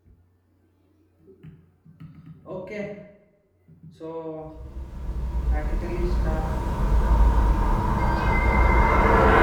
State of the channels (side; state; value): both; identical; correlation 1.00